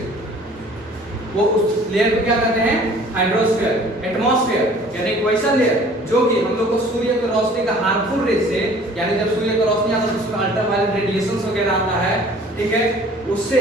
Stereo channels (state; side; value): normal; both; correlation 0.51